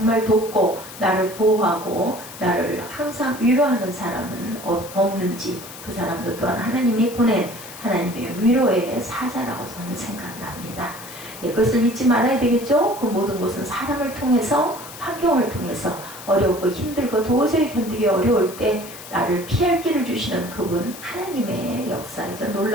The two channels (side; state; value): left; noise; hiss, 14 dB below the sound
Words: 돕고 나를 보호하고 나를 항상 위로하는 사람은 없는지 그 사람도 또한 하나님이 보낸 하나님의 위로의 사자라고 저는 생각을 합니다. 그것을 잊지 말아야 되겠죠. 그 모든 것은 사람을 통해서 환경을 통해서 어렵고 힘들고 도저히 견디기 어려울 때 나를 피할 길을 주시는 그분 하나님의 역사이자